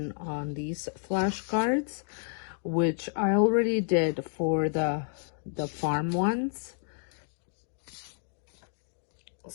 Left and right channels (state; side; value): silent; right; digital silence